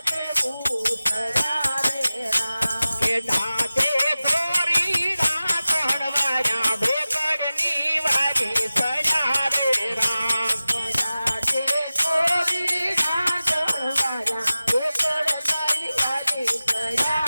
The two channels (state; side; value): inverted; both; correlation -0.96